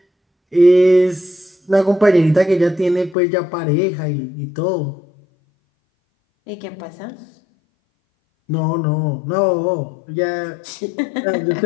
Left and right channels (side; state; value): right; drops out; at 3.2 s